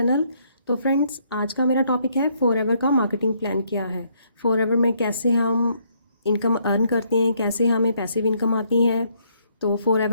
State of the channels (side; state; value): both; inverted; correlation -0.70